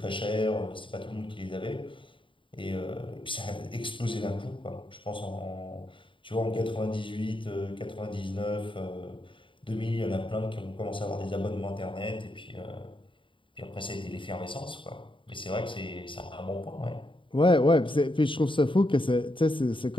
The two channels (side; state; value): right; late; 0.25 ms